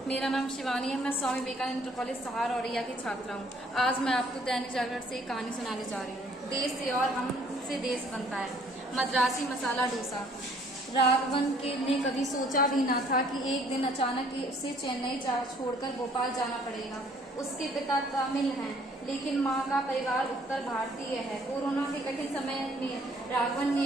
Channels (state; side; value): normal; both; correlation 0.61